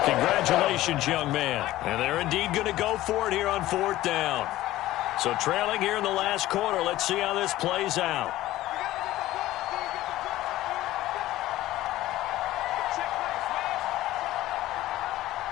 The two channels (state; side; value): quieter; right; 15.7 dB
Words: Congratulations, young man. And they're indeed going to go for it here on 4th down. So trailing here in the last quarter, let's see how this plays out.